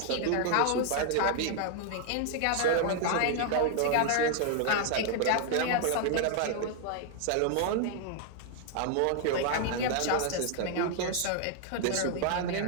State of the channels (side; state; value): both; different; correlation 0.00